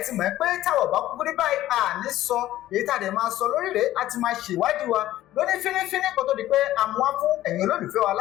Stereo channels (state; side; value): quieter; right; 14.3 dB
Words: ti mọ̀ pé táwọn bá kúkú rí báyìí àní sọ èyí tá a dẹ̀ máa sọ lórí rẹ̀ á ti máa ṣèwádìí wa lóní fínífíní kó tó di pé a mú wá fún ẹ̀yin olólùfẹ́ wa